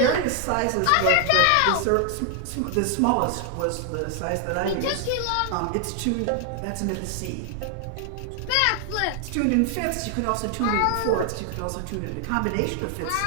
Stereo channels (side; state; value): both; different; correlation 0.00